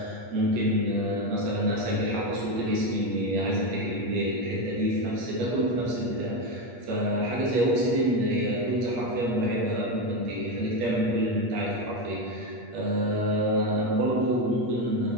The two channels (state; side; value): late; left; 8.4 ms